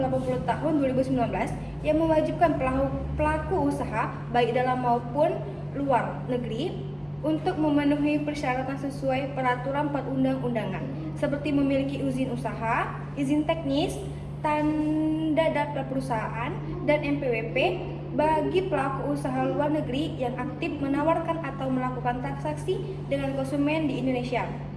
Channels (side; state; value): both; identical; correlation 1.00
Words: 80 tahun 2019 yang mewajibkan pelaku usaha baik dalam maupun luar negeri untuk memenuhi persyaratan sesuai peraturan perundang-undangan, seperti memiliki izin usaha, izin teknis, tanda daftar perusahaan, dan NPWP bagi pelaku usaha luar negeri yang aktif menawarkan atau melakukan transaksi dengan konsumen di Indonesia,